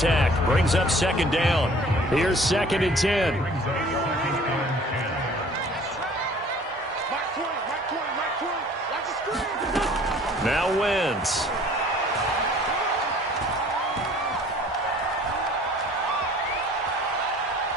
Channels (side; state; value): both; normal; correlation 0.51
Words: Brings up second down. Here's 2nd and 10. Now Wentz.